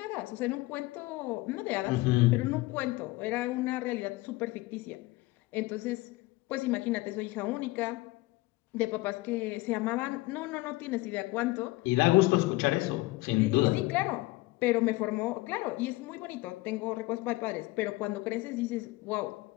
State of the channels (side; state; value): right; quieter; 20.5 dB